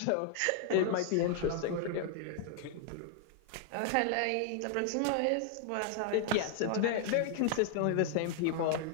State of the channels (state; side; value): different; both; correlation 0.00